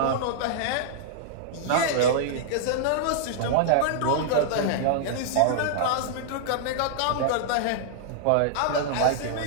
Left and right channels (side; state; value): both; different; correlation -0.01